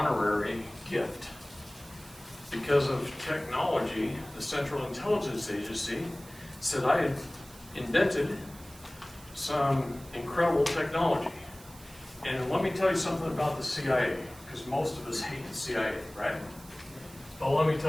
gift. Because of technology, the Central Intelligence Agency said I had invented some incredible technology. And let me tell you something about the CIA, because most of us hate the CIA, right? But let me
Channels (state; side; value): noise; right; hiss, 20 dB below the sound